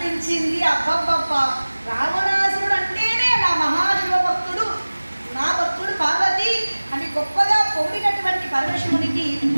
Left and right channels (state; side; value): inverted; both; correlation -1.00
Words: అబ్బబ్బబ్బ, రావణాసురుడు అంటేనే నా మహాశివ భక్తుడు, నా భక్తుడు పార్వతి అని గొప్పగా పొగిడినటువంటి పరమశివునికి